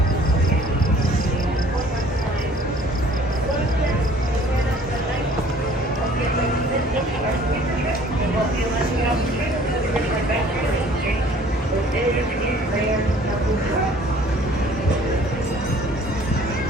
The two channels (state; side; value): normal; both; correlation 0.54